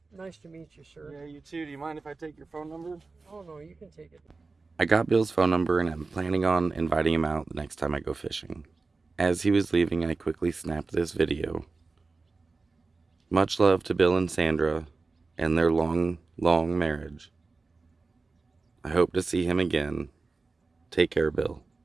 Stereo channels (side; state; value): left; quieter; 3.9 dB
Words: Nice to meet you, sir. Yeah, you too. Do you mind if I take your phone number? Oh, no, you can take it. I got Bill's phone number and I'm planning on inviting him out the next time I go fishing. As he was leaving, I quickly snapped this video. Much love to Bill and Sandra and their long, long marriage. I hope to see him again. Take care, Bill,